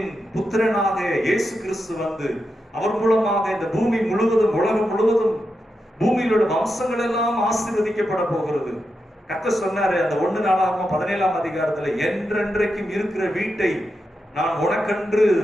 புத்திரனாக இயேசு கிறிஸ்து வந்து அவர் மூலமாக இந்த பூமி முழுவதும், உலகம் முழுவதும், பூமியில் உள்ள வம்சங்கள் எல்லாம் ஆசீர்வதிக்கப்பட போகிறது. கர்த்தர் சொன்னாரு அந்த 1 நாளாகமம் 17ஆம் அதிகாரத்துல, என்றென்றைக்கும் இருக்கிற வீட்டை நான் உனக்கென்று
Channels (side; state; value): both; normal; correlation 0.87